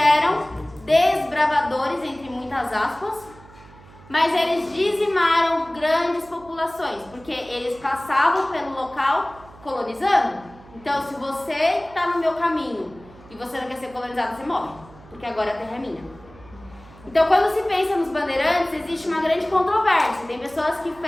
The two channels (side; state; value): right; noise; hum, 22 dB below the sound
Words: desbravadores, entre muitas aspas, mas eles dizimaram grandes populações, porque eles passavam pelo local colonizando. Então, se você está no meu caminho e você não quer ser colonizado, você morre, porque agora a terra é minha. Então, quando se pensa nos bandeirantes, existe uma grande controvérsia. Tem pessoas que